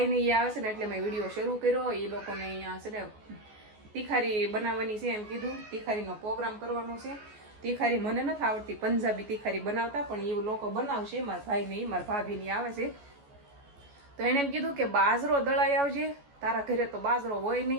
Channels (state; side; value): late; left; 14 ms